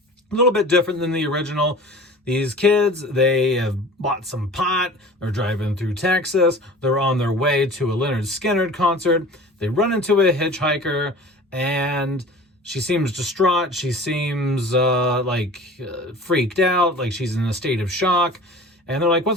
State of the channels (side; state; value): both; normal; correlation 0.41